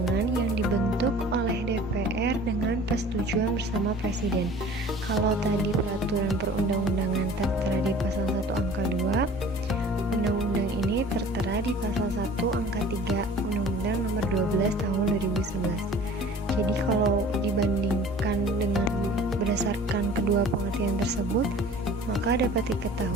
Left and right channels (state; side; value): normal; both; correlation 0.46